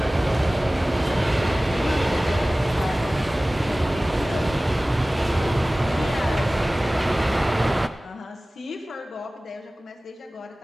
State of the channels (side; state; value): both; normal; correlation 0.98